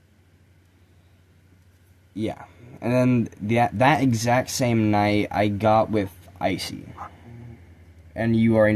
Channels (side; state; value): both; identical; correlation 1.00